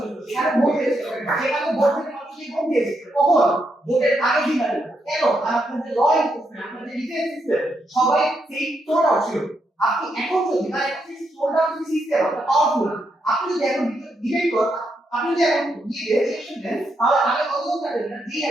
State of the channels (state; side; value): normal; both; correlation 0.80